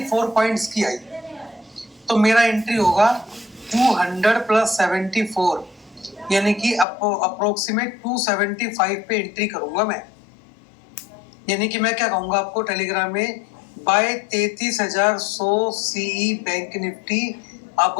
पॉइंट्स की आई। तो मेरा एंट्री होगा 200 प्लस 74, यानी कि अप्रोक्सीमेट 275 पे एंट्री करूंगा मैं। यानी कि मैं क्या कहूंगा आपको टेलीग्राम में, buy 33,100 CE bank Nifty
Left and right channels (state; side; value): drops out; right; at 6.9 s